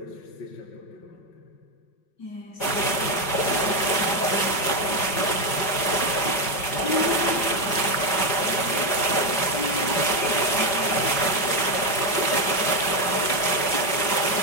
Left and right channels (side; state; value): right; late; 5.4 ms